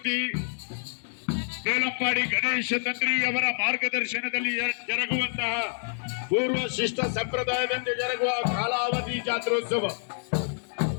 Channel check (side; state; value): right; silent; digital silence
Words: ಬೇಲಂಪಾಡಿ ಗಣೇಶ ತಂತ್ರಿ ಅವರ ಮಾರ್ಗದರ್ಶನದಲ್ಲಿ ಜರುಗುವಂತಹ ಪೂರ್ವ ಶಿಷ್ಟ ಸಂಪ್ರದಾಯದಂತೆ ಜರುಗುವ ಕಾಲಾವಧಿ ಜಾತ್ರೋತ್ಸವ